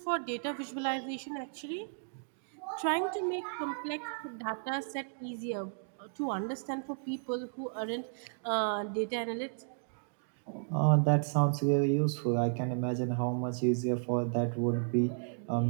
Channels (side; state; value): left; silent; digital silence